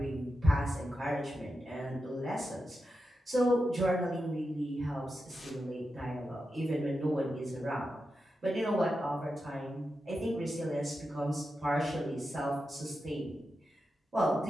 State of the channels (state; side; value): normal; both; correlation 0.89